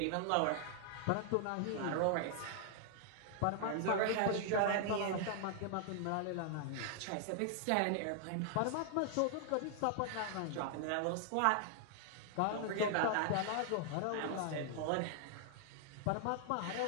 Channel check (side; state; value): both; different; correlation -0.01